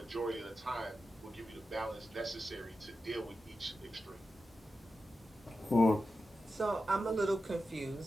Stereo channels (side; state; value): both; normal; correlation 0.91